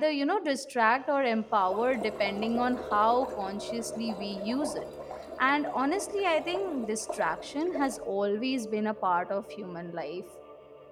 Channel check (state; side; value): identical; both; correlation 1.00